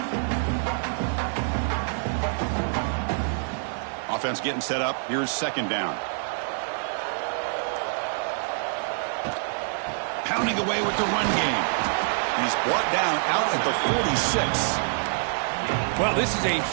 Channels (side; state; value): left; silent; 61 dB below the other